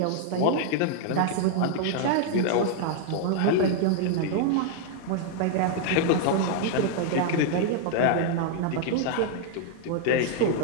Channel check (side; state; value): both; different; correlation -0.01